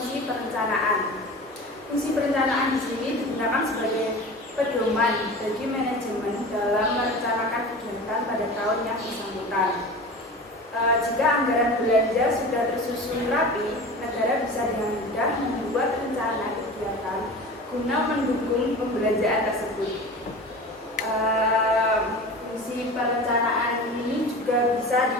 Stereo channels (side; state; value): both; normal; correlation 0.34